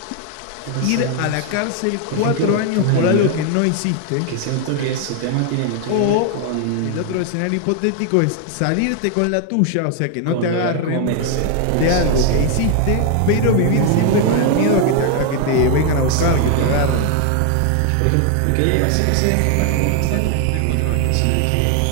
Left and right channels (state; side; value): different; both; correlation 0.00